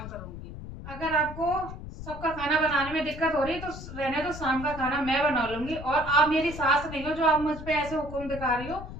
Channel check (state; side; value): noise; left; rumble, 11 dB below the sound